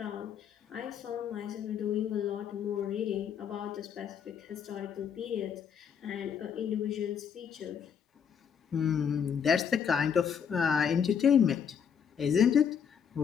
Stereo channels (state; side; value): quieter; right; 7.5 dB